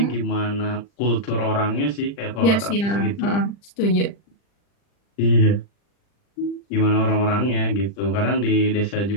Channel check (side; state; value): right; late; 40 ms